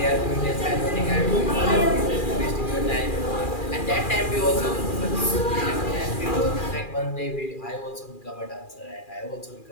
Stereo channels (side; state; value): right; late; 2.4 ms